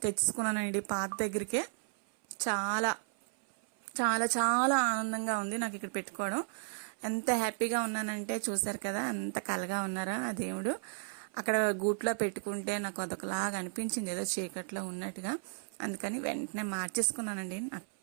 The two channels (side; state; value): left; silent; 55 dB below the other